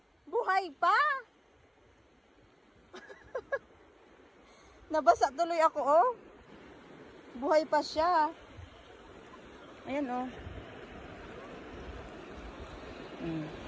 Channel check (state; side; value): identical; both; correlation 1.00